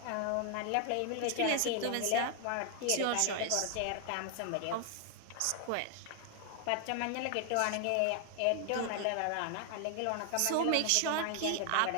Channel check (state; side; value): different; both; correlation 0.00